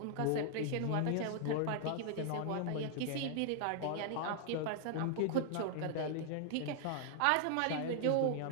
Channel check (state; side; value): different; both; correlation 0.00